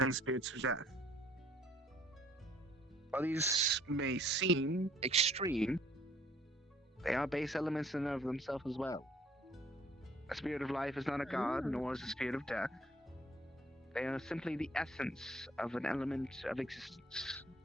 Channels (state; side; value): normal; both; correlation 0.60